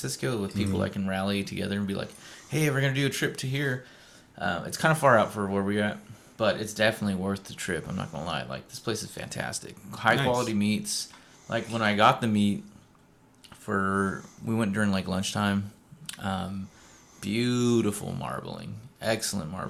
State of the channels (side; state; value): both; identical; correlation 1.00